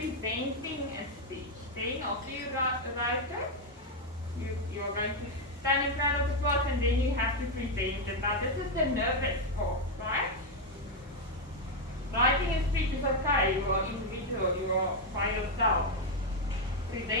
a speech. Then, after you write it, you're going to stand in front of the class and then you have to present it. Now, this is the nervous part, right? Writing a speech is okay, you are individual, you are by yourself.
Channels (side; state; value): both; normal; correlation 0.03